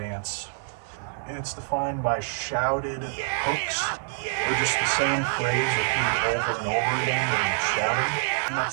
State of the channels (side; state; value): left; silent; 61 dB below the other